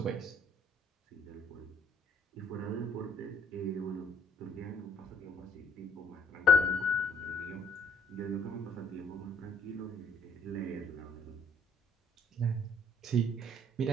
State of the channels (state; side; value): normal; both; correlation 0.62